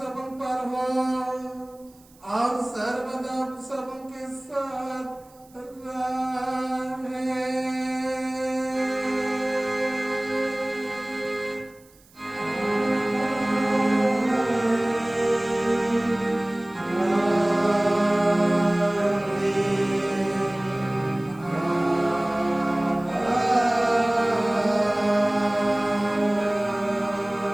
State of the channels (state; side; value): noise; right; hiss, 29 dB below the sound